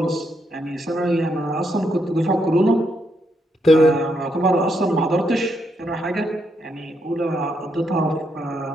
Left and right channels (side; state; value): both; normal; correlation 0.78